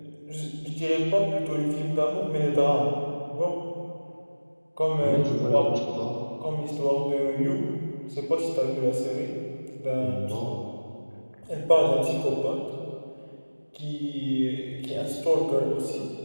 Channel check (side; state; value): both; inverted; correlation -1.00